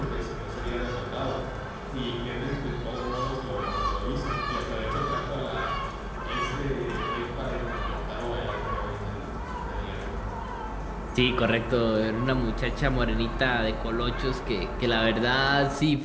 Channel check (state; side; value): identical; both; correlation 1.00